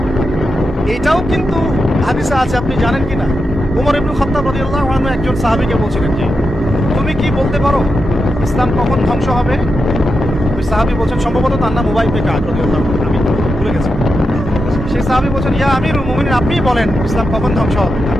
এইটাও কিন্তু হাদিসে আছে, আপনি জানেন কি না? উমর ইবনে খাত্তাব রাদিয়াল্লাহু আনহু একজন সাহাবীকে বলছিলেন যে তুমি কি বলতে পারো ইসলাম কখন ধ্বংস হবে? ওই সাহাবী বলছেন, সম্ভবত তার নাম উবাই ইবনে কাব রাদিয়াল্লাহু আনহু, আমি ভুলে গেছি। সেই সাহাবী বলছেন, ইয়া আমিরুল মুমিনিন, আপনিই বলেন ইসলাম কখন ধ্বংস হবে,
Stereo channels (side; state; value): both; normal; correlation 0.87